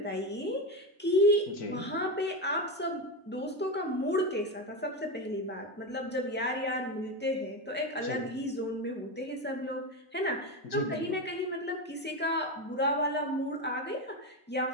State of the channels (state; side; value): normal; both; correlation 0.15